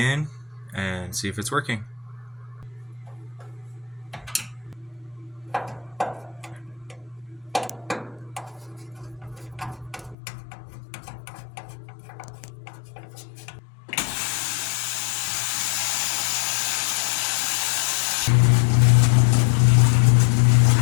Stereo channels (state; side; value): drops out; right; at 10.2 s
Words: and see if it's working.